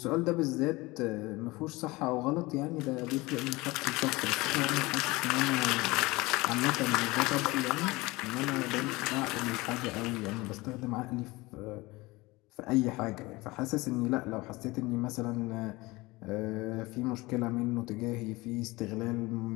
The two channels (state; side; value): quieter; right; 22.0 dB